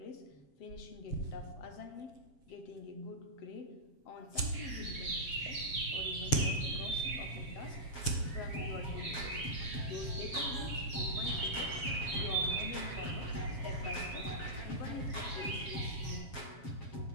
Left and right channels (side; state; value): right; late; 7.1 ms